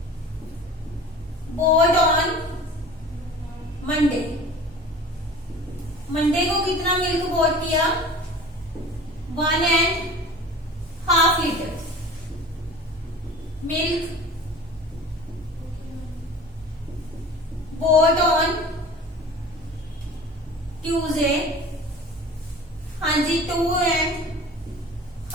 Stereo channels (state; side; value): normal; both; correlation 0.41